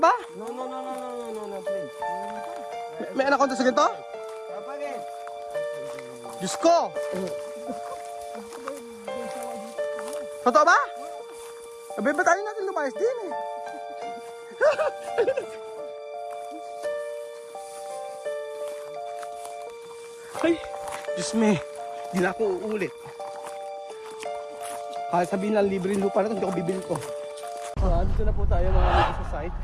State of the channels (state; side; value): identical; both; correlation 1.00